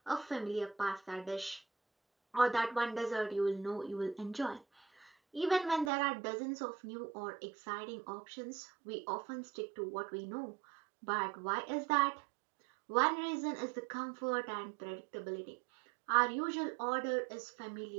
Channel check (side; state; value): left; drops out; at 5.9 s